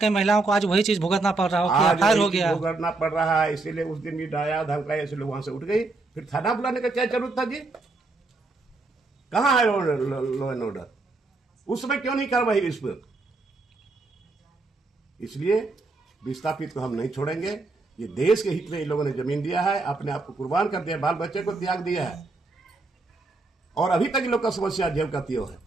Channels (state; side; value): quieter; left; 3.4 dB